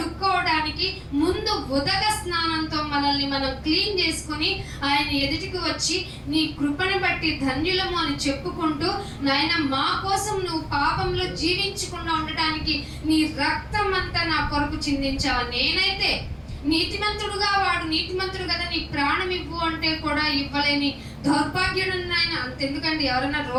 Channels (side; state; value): both; identical; correlation 1.00